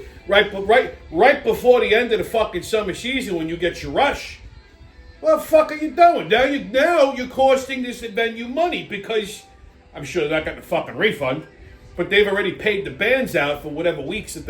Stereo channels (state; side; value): identical; both; correlation 1.00